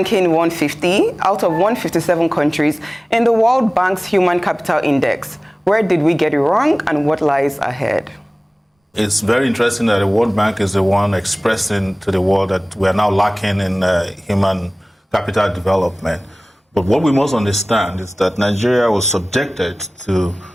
150 out of 157 countries in the World Bank's Human Capital Index. Where did we get it wrong and what lies ahead? It's very interesting that the World Bank is the one expressing to the world that we are now lacking in human capital development. But what we must understand is that Nigeria was subjected to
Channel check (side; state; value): both; normal; correlation 0.98